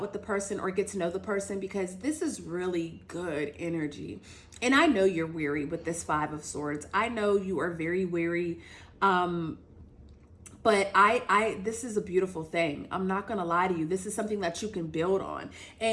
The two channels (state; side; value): identical; both; correlation 1.00